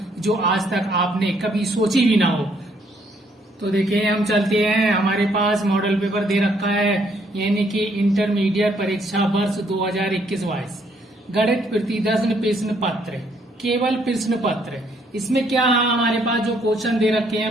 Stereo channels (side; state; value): both; normal; correlation 0.69